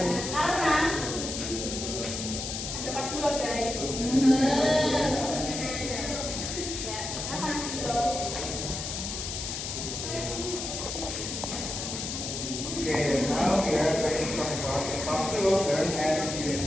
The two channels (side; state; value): left; noise; hiss, 5 dB below the sound